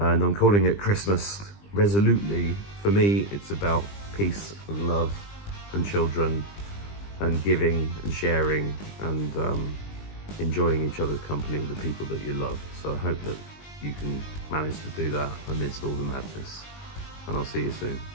I'm calling it Christmas resolutely. For me, it's about peace and love and children and giving and sharing and enjoying each other's company with the people that you love. So I hope that you can manage to do that amidst all the madness. And I'll see you soon.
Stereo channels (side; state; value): right; late; 20 ms